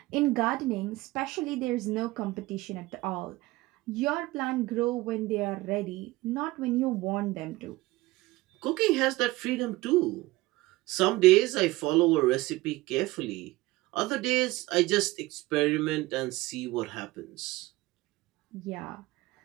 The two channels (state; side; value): quieter; left; 19.6 dB